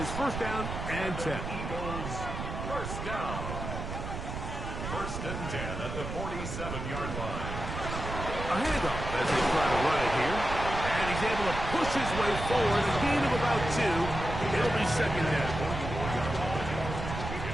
1st down and 10. Eagles, 1st down. 1st and 10 at the 47-yard line. A handoff as they try to run it here. And he's able to push his way forward. A gain of about 2. It'll be 2nd down.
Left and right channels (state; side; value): noise; right; rumble, 6 dB below the sound